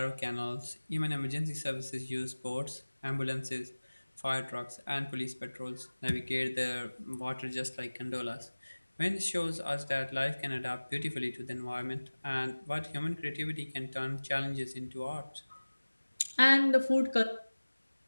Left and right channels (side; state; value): both; inverted; correlation -1.00